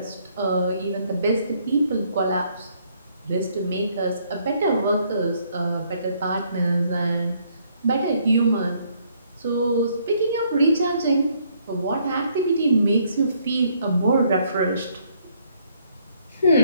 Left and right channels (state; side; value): inverted; both; correlation -0.68